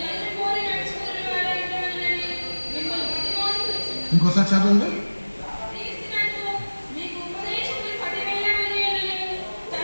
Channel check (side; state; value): both; inverted; correlation -1.00